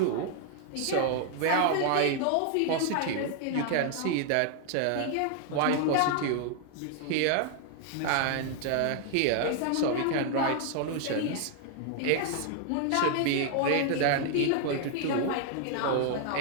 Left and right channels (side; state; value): both; different; correlation 0.00